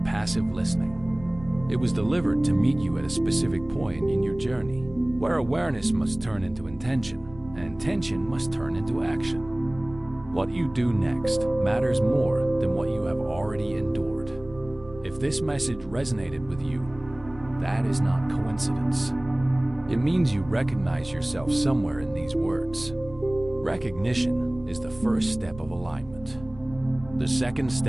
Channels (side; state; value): right; noise; rumble, 19 dB below the sound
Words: listening. It was delivered to meet you at a specific point in your journey, where awareness must turn into intention, and intention must turn into action. What you do next matters more than what you have already endured. If this message resonated with you, that is not coincidence. It means you recognize yourself somewhere in these words. Recognition is the first step of alignment. The second